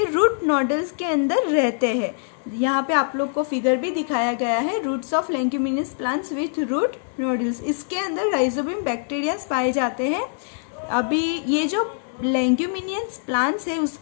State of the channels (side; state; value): right; silent; 63 dB below the other